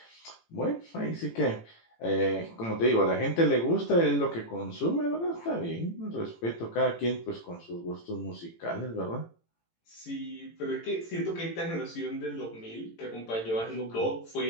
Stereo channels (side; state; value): right; late; 18 ms